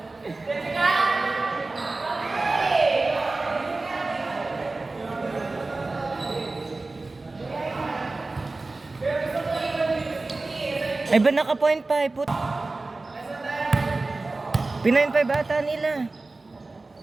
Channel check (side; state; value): left; quieter; 3.3 dB